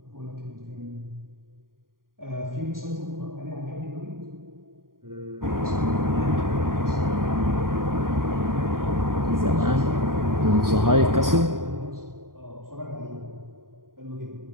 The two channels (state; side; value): late; left; 0.91 ms